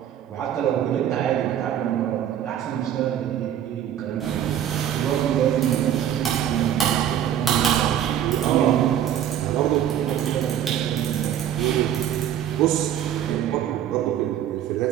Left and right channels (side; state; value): left; quieter; 10.4 dB